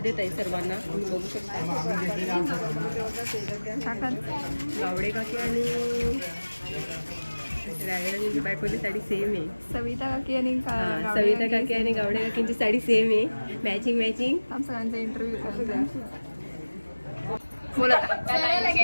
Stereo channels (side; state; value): both; inverted; correlation -1.00